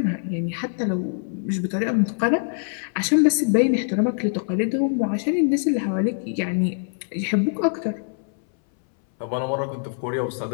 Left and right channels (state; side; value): silent; right; 60 dB below the other